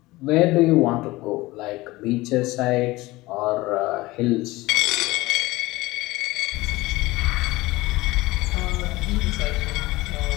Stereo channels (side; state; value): right; quieter; 19.8 dB